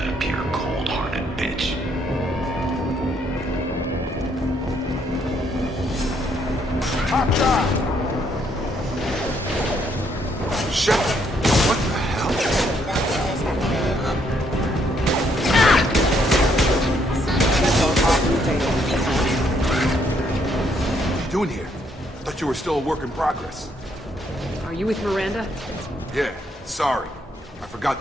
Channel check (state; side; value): normal; both; correlation 0.71